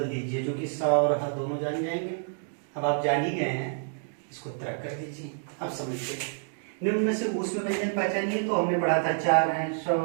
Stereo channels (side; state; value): left; silent; digital silence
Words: दीजिए, जो कि सा और हा दोनों जान जाएंगे। अब आप जान ही गए हैं, इसको तरक कर दीजिए, आप समझते। निम्न में से ऊष्म व्यंजन पहचानिए। तो हमने पढ़ा था 4 हैं, श,